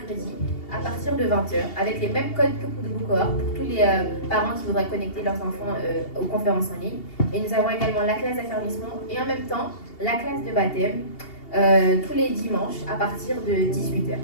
à partir de 20h avec les mêmes codes que pour de cohorte pour tous les parents qui voudraient connecter leurs enfants aux conférences en ligne. Et nous avons également la classe d'affermissement et en même temps la classe de baptême tous les dimanches à partir de 18h.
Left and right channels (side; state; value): right; late; 2.8 ms